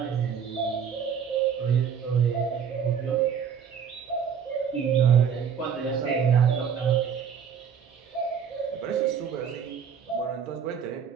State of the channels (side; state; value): left; quieter; 7.3 dB